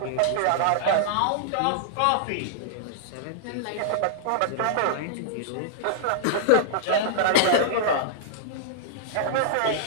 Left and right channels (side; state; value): both; different; correlation -0.01